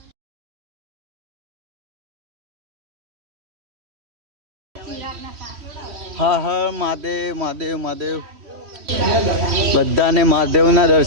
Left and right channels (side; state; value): left; late; 3.1 ms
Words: હા હા મહાદેવ મહાદેવ મહાદેવ. બધાને મહાદેવના